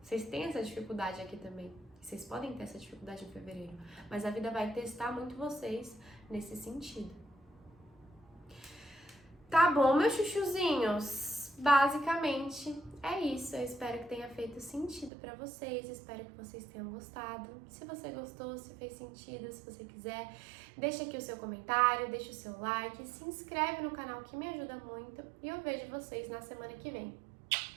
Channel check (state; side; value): drops out; left; at 15.1 s